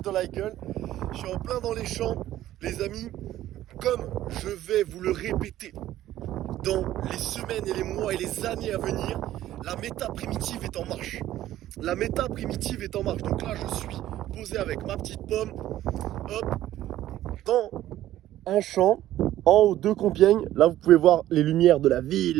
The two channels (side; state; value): left; quieter; 13.6 dB